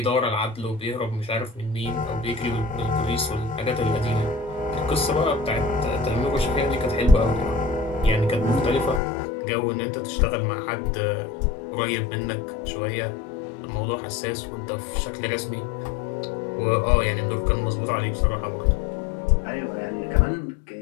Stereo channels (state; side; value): drops out; right; at 9.0 s